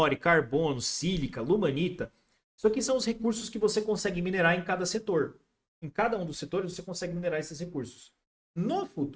carbono, sílica, lumanita. Isso aqui são os recursos que você consegue minerar em cada setor. Em cada um dos setores você consegue minerar esses recursos. No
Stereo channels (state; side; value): identical; both; correlation 1.00